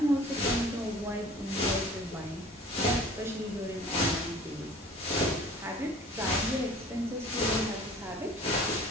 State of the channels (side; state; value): both; normal; correlation 0.47